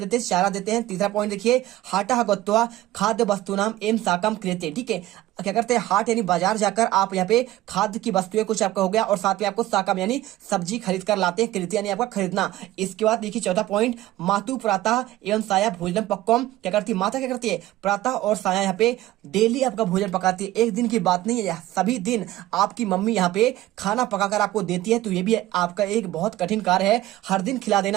हैं, चारा देते हैं। तीसरा पॉइंट देखिए, हाटा गत्वा खाद्य वस्तु नाम एम साकम क्रियते, ठीक है। क्या करते हैं, हाट यानी बाजार जाकर आप यहाँ पे खाद्य की वस्तुएं कुछ आपका हो गया, और साथ में आपको साकम यानी सब्जी खरीद कर लाते हैं, कृत्य यानी आपका खरीदना। इसके बाद देखिए चौथा पॉइंट, मातु प्रातः एवं साया भोजन पक्वम, क्या करती है, माता क्या करती है, प्रातः और साया यहाँ पे डेली आपका भोजन पकाती है, एक दिन की बात नहीं है, सभी दिन आपकी मम्मी यहाँ पे खाना पकाकर आपको देती है। तो ये भी आपका एक बहुत कठिन कार्य है, हर दिन खिला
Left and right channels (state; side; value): quieter; left; 15.7 dB